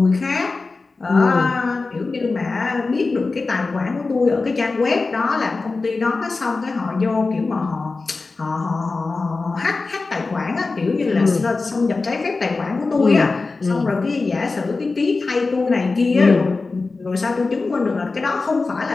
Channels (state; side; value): quieter; right; 3.8 dB